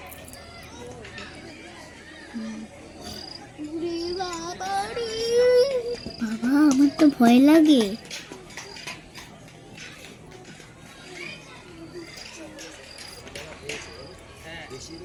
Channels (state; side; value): identical; both; correlation 1.00